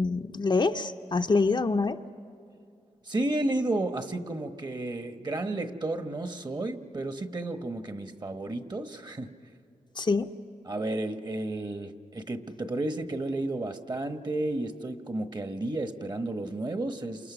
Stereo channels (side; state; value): both; normal; correlation 0.81